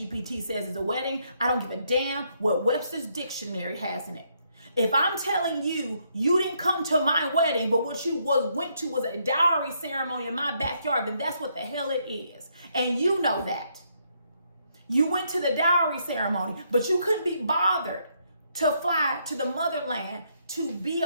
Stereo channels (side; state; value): both; inverted; correlation -0.73